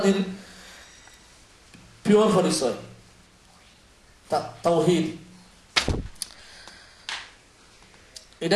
পিওর পরিচয়, তাওহীদ।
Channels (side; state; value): both; identical; correlation 1.00